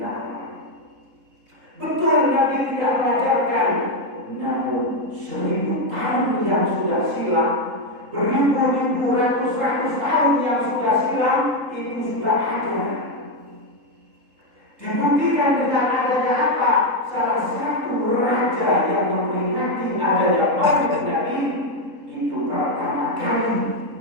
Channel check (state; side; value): late; left; 3.7 ms